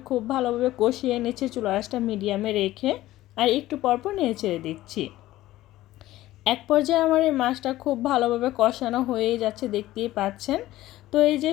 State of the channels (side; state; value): right; quieter; 15.7 dB